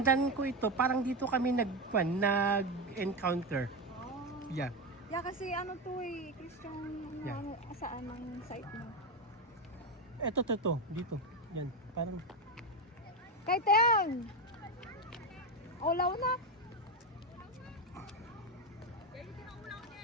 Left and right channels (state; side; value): normal; both; correlation 0.13